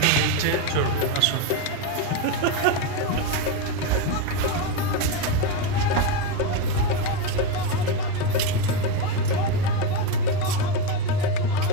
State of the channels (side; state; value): both; different; correlation 0.05